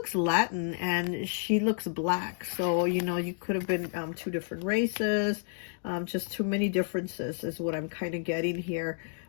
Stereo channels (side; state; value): right; silent; digital silence